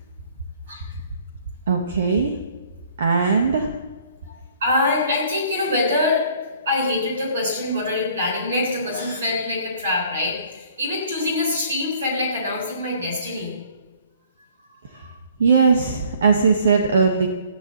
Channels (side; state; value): both; inverted; correlation -0.58